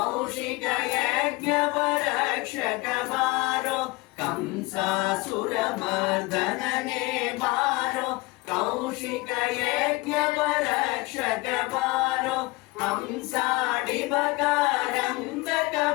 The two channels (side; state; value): right; quieter; 23.3 dB